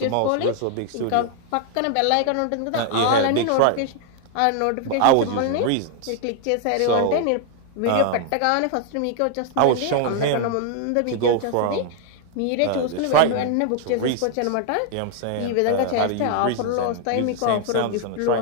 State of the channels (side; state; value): both; different; correlation 0.00